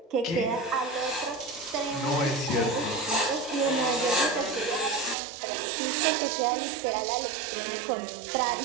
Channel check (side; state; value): left; drops out; at 5.2 s